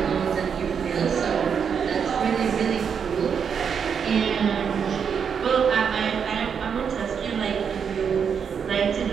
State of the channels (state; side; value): quieter; left; 7.0 dB